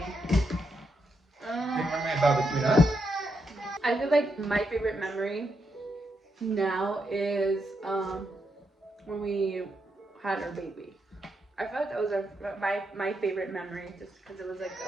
Favorite memory about between us? I feel like my favorite memory now is when we had our baby. I feel like that was my favorite memory, just because it was like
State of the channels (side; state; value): both; normal; correlation 0.81